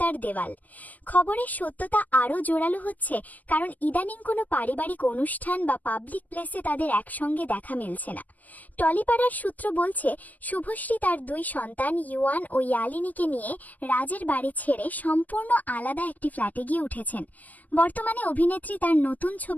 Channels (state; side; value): late; right; 0.078 ms